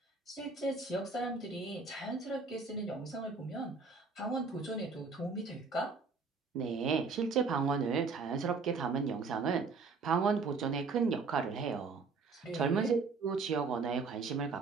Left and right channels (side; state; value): left; quieter; 4.5 dB